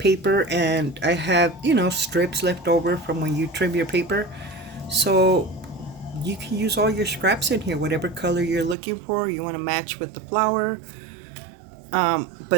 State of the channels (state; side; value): drops out; left; at 8.8 s